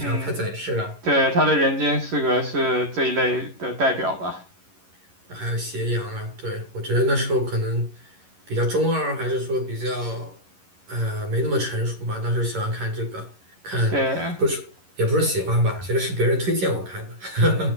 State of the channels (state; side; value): late; left; 11 ms